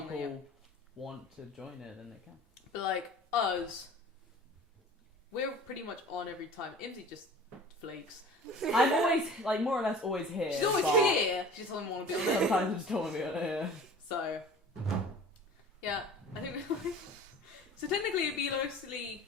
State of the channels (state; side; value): normal; both; correlation 0.42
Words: people Yeah. want to join it, then they can. But like us, we're pretty much on every time. Imsy just flakes. I'm always, like, more or less always here. She's always but here. She just doesn't want to be on it. Sometimes I just don't want to be on it. Yeah. So, yeah, I think. So technically, it'd be mostly.